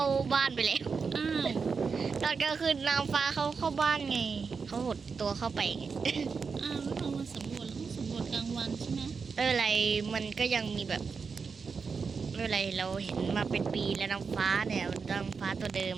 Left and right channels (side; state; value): left; quieter; 5.3 dB